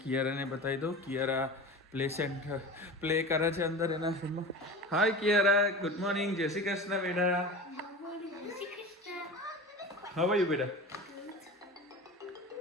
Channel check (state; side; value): normal; both; correlation 0.32